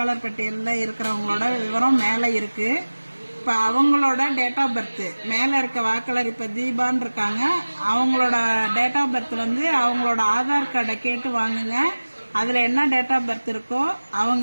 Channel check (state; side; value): inverted; both; correlation -1.00